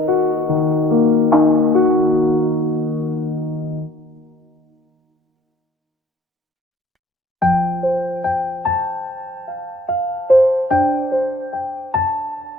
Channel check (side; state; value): both; normal; correlation 0.58